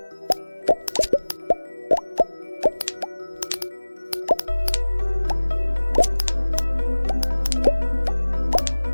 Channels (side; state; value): both; inverted; correlation -1.00